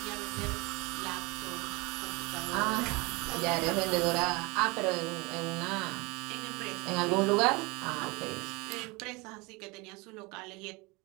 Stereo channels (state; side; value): quieter; left; 26.0 dB